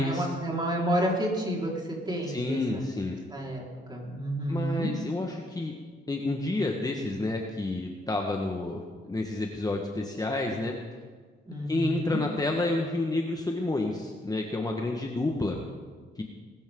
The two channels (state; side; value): normal; both; correlation 0.72